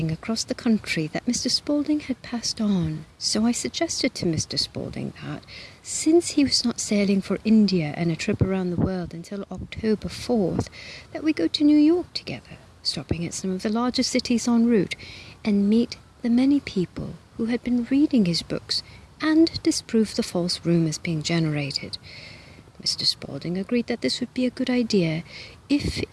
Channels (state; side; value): identical; both; correlation 1.00